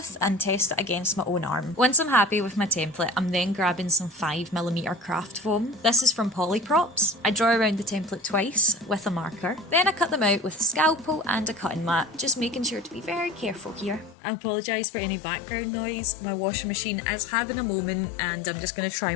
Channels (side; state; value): right; drops out; at 14.2 s